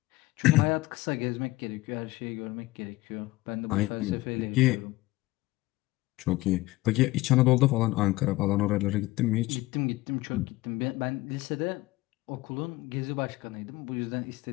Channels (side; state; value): right; quieter; 19.5 dB